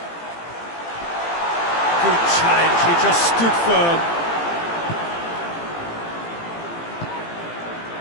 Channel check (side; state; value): right; late; 18 ms